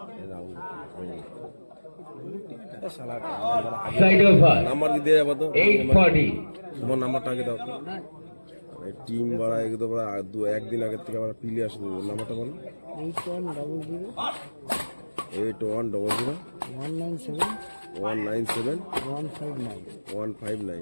Side of her. Number কি দিয়ে যাবো তো 8-40. তোমার নাম্বারটা আগে দাও টিম বাড়া একদম একদিন আগের থেকে আমরা পিলে আসবো নাম্বারটা বলো 8100 8100 197 197 159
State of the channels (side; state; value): both; inverted; correlation -1.00